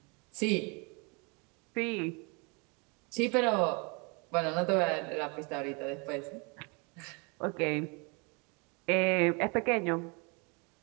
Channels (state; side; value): quieter; left; 31.4 dB